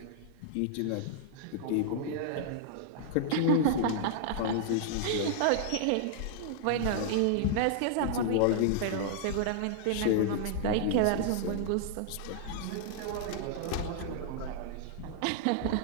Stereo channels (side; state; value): both; different; correlation -0.01